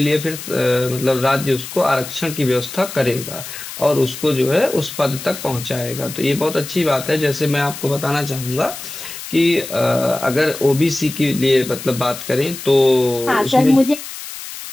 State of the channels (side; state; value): left; noise; hiss, 11 dB below the sound